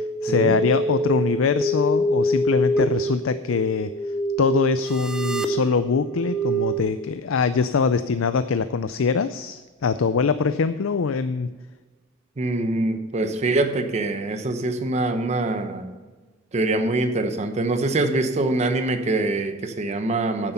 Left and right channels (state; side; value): normal; both; correlation 0.31